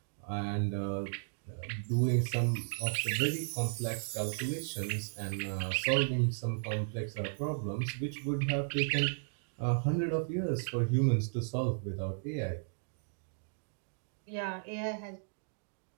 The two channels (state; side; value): silent; left; digital silence